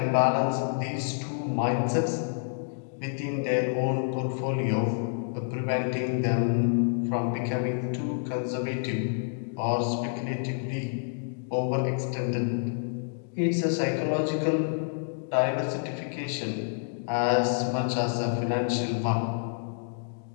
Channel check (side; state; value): right; silent; digital silence